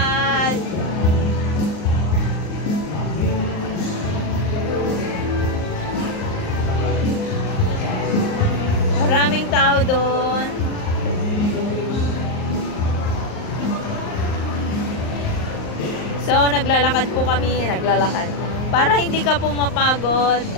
Maraming tao doon. So, naglalakad po kami, Para hindi ka po mapagod,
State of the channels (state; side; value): late; right; 38 ms